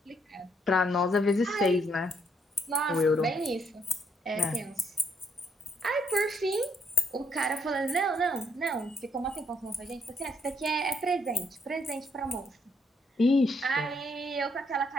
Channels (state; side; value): normal; both; correlation 0.71